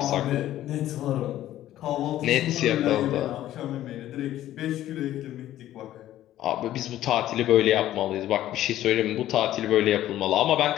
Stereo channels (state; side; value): quieter; right; 13.3 dB